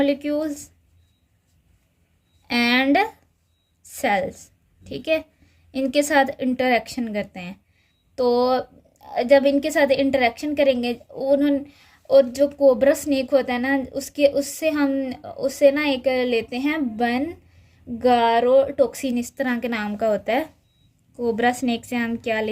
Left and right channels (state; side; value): identical; both; correlation 1.00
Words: and cells, ठीक है। इनके साथ इंटरेक्शन करते हैं। तो जब इनके साथ इंटरेक्शन करेंगे उन्होंने, और जो कोबरा स्नेक होता है ना, उससे ना एक लेते हैं गारोटोक्सिन, इस तरह के नाम का होता है। कोबरा स्नेक से हम क्या